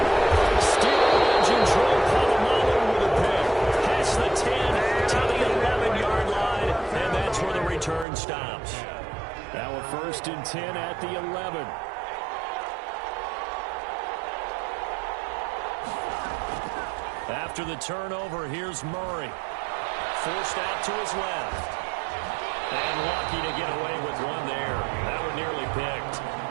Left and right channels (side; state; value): left; drops out; at 8.1 s